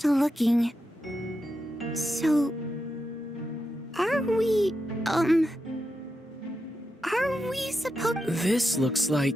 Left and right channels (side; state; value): both; normal; correlation 0.87